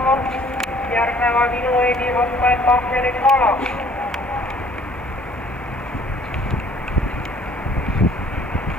Järgnevad Ilueedi, Hotman, Pahveri, Kala.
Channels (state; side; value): normal; both; correlation 0.56